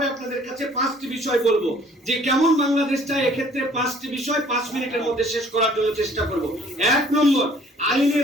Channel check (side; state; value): both; normal; correlation 0.56